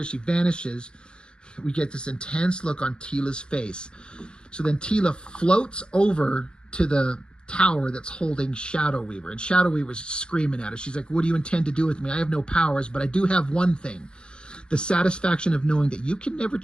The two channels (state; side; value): late; right; 0.051 ms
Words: She vanishes. We get this intense look on Tila's face. So then Tila floats over to the tower that's holding Shadow Weaver. And Shadow Weaver's screaming at her. She's like, what do you intend to do with me? I have no powers, but I do have one thing. The satisfaction of knowing that you can never